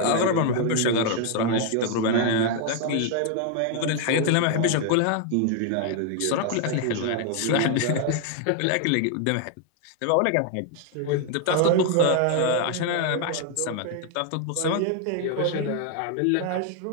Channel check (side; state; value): both; different; correlation 0.00